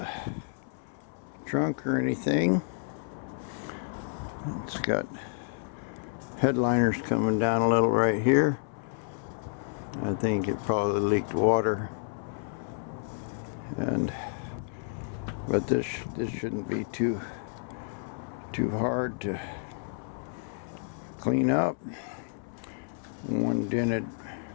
trunk or anything. It's got headliners coming down a little right here. I think it probably leaked water, but this shouldn't be too hard to clean up. One dented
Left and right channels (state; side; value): silent; right; 58 dB below the other